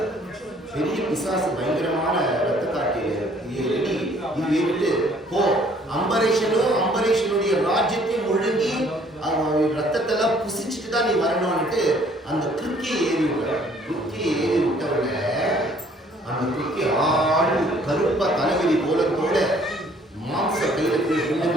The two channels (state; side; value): normal; both; correlation 0.59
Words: பெரிய பிசாசு, பயங்கரமான ரத்த காட்டியது. இது விட்டு போ, அம்பரீஷனுடைய ராஜ்யத்தையும் ஒழுங்கி ரத்தத்தெல்லாம் புசிச்சுட்டு தான் நீ வரணும்னுட்டு அந்த கிருக்கியை ஏறி விட்டார். கிருக்கியை ஏறி விட்டவுடனே அந்த கிருக்கி ஆடு கருப்பா தலைவலி போல மாம்ச கையில